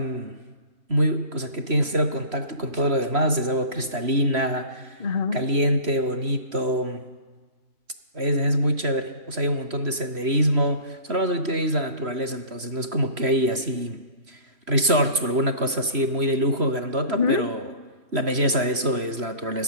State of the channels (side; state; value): left; late; 3.0 ms